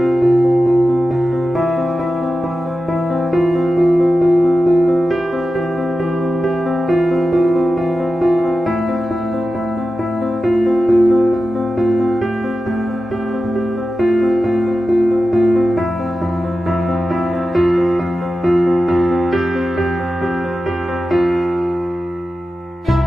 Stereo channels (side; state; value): both; normal; correlation 0.93